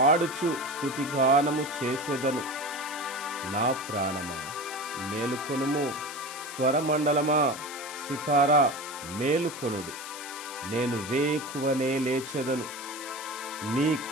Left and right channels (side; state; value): left; noise; hiss, 11 dB below the sound